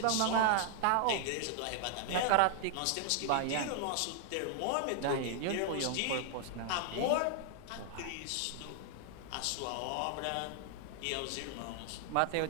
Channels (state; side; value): different; both; correlation 0.00